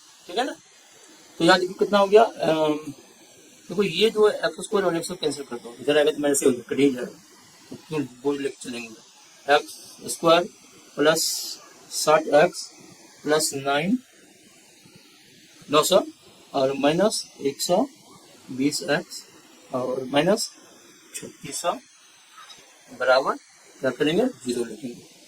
ठीक है ना। तो यहाँ देखिए कितना हो गया, देखो ये जो है एक्स स्क्वायर और एक्स कैंसिल कर दो, इधर आएगा तो मेरे से हो कट ही जाएगा, तो क्यों बोल लेके चलेंगे, x square plus 60x plus 900 और माइनस 120x और माइनस 3600 बराबर क्या करेंगे 0 लिखेंगे,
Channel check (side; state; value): both; identical; correlation 1.00